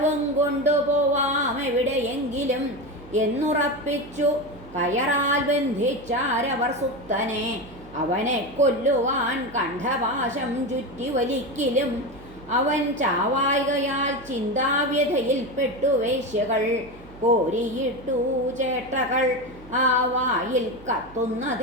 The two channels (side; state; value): right; noise; hum, 20 dB below the sound